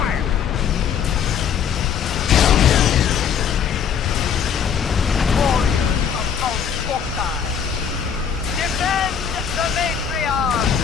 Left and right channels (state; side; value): quieter; right; 7.6 dB